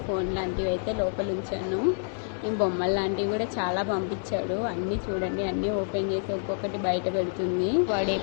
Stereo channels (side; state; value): right; silent; digital silence